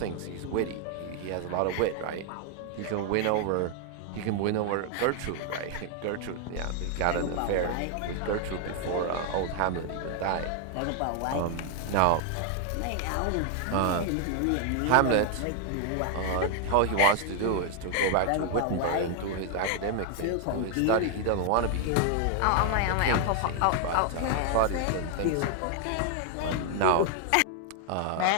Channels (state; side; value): different; both; correlation 0.00